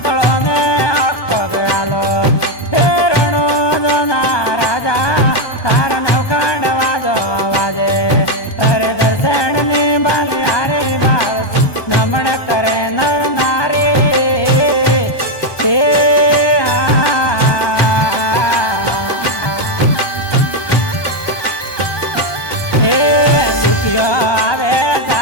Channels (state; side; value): late; right; 1.2 ms